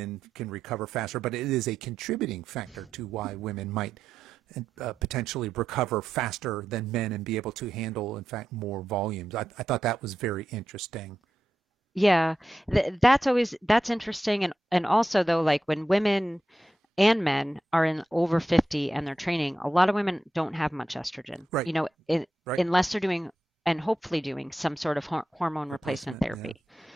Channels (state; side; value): normal; both; correlation 0.88